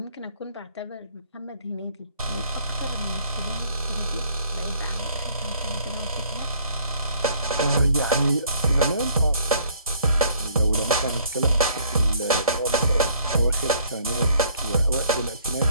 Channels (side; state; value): both; inverted; correlation -0.61